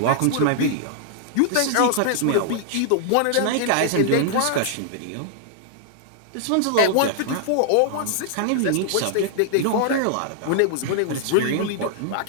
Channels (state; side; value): different; both; correlation -0.01